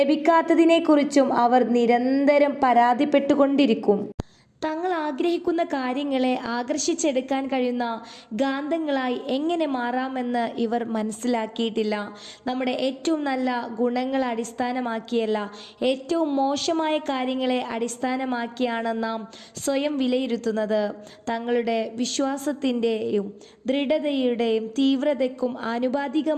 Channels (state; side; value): identical; both; correlation 1.00